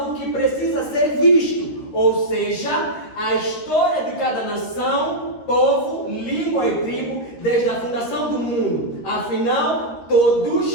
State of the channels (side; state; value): right; late; 13 ms